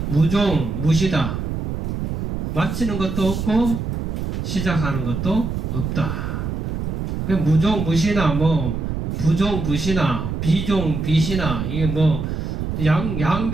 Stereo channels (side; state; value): right; noise; rumble, 3 dB below the sound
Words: 무종 무시다. 마치는 것도 없고 시작하는 것도 없다. 무종 무시나 부종 부시나 비종 비시나 이게